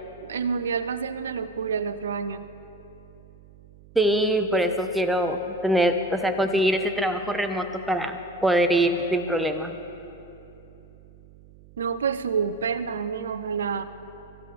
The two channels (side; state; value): right; noise; hum, 23 dB below the sound